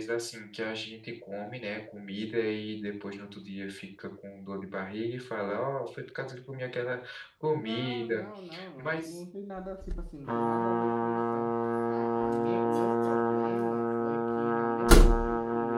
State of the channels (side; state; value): both; identical; correlation 1.00